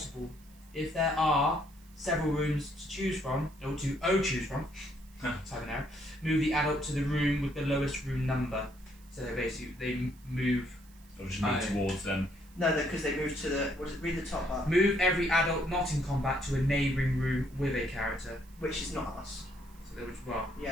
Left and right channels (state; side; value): noise; right; hiss, 27 dB below the sound